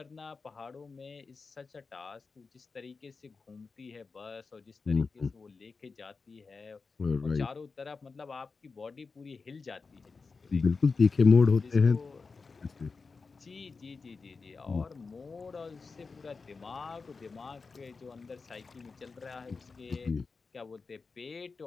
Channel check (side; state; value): right; quieter; 4.5 dB